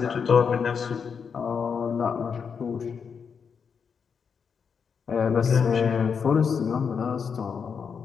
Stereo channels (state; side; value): quieter; right; 6.4 dB